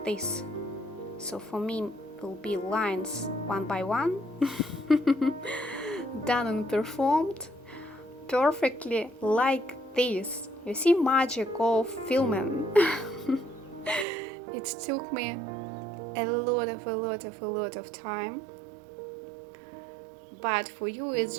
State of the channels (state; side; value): drops out; left; at 14.1 s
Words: this. So for me, will be lines one by one, done and performed perfectly like this. You see, magic of filming. It took me a lot of time, but for you it's